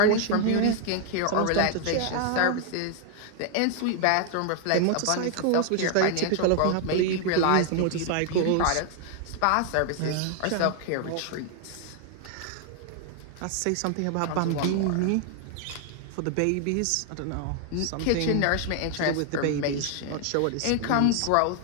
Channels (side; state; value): both; different; correlation 0.00